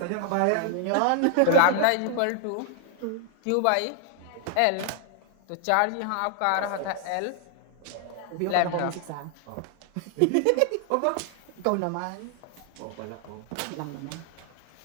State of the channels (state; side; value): different; both; correlation 0.00